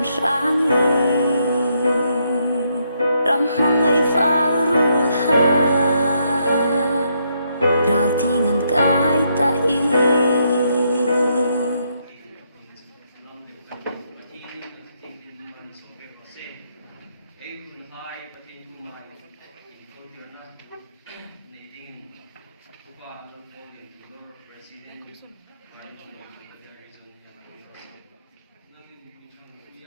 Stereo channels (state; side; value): inverted; both; correlation -0.76